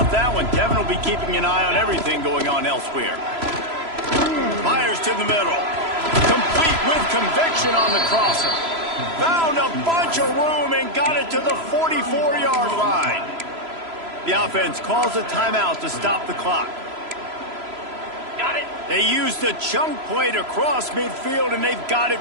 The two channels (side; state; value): left; late; 3.0 ms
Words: that one? Kevin will be keeping an eye on everything going on elsewhere. Fires to the middle. Complete with conviction on the crosser. Found a bunch of room and got it to the 44-yard line. The offense calls a timeout to stop the clock. Got it. They used a chunk play to cross midfield, and they've got it